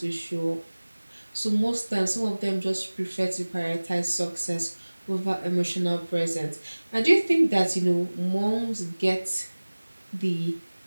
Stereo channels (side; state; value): both; inverted; correlation -1.00